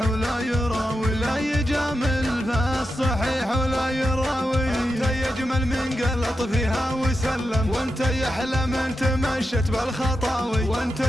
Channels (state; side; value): normal; both; correlation 0.88